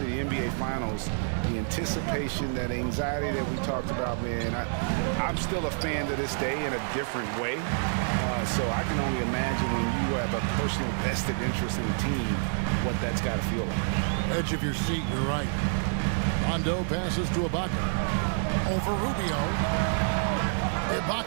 the NBA Finals, the anticipation, that anxiety that we talked about, man, I'm still a fan to this day in a different way. So I can only imagine when you have a personal vested interest in the team, what that's got to feel like. Edge of your seat, you're right. Rondo passes to Ibaka. Over Rubio.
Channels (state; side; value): silent; left; digital silence